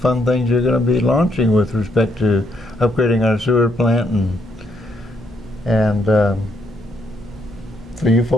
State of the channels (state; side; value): normal; both; correlation 0.74